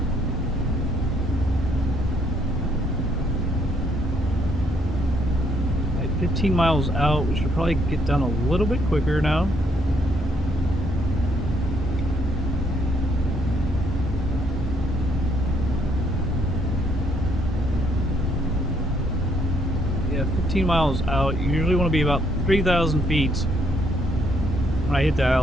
15 miles out. We should probably get down a little bit quicker now. Yeah, 15 miles out. You usually want to be about 3,000 feet when I hit the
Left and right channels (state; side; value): normal; both; correlation 0.71